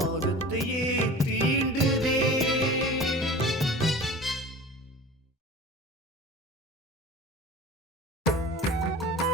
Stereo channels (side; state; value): both; normal; correlation 0.38